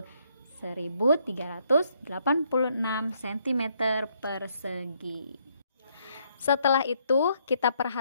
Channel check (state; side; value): inverted; both; correlation -0.71